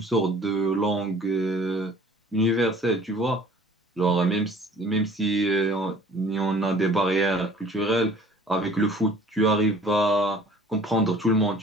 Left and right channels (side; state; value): both; normal; correlation 0.51